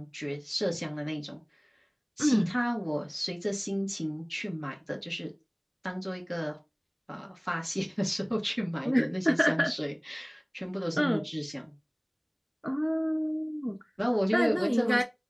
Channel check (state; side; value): identical; both; correlation 1.00